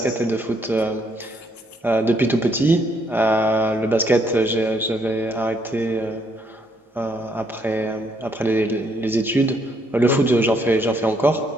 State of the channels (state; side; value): normal; both; correlation 0.71